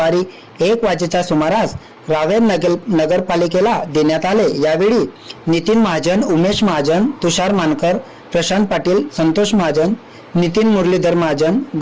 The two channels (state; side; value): identical; both; correlation 1.00